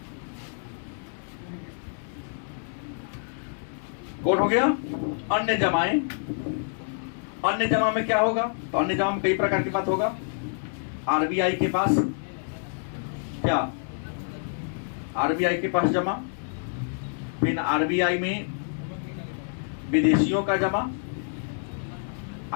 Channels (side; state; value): right; silent; digital silence